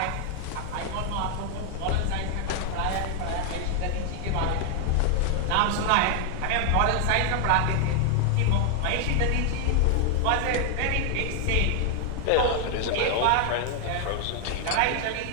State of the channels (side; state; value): both; different; correlation 0.00